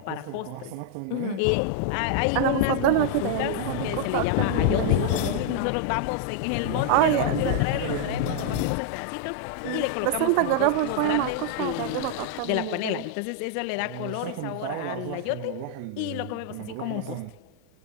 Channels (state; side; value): different; both; correlation 0.00